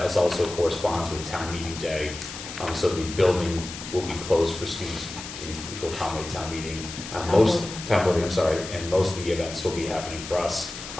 also corresponds with town meeting day. So the building will be closed for students to accommodate town meeting. Town voting, I'm sorry, and most of the events will be happening for us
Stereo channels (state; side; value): noise; left; hiss, 10 dB below the sound